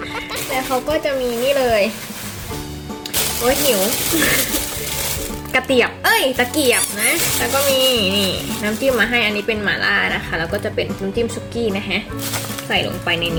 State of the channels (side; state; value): both; identical; correlation 1.00